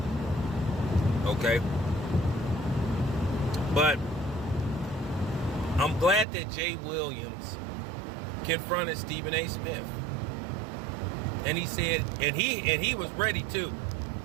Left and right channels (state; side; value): drops out; left; at 6.2 s